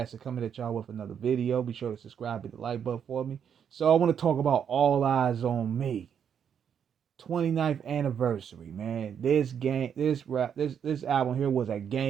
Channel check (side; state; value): left; quieter; 8.0 dB